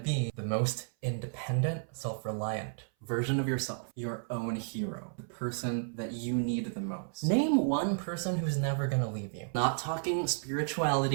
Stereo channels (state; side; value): silent; left; 56 dB below the other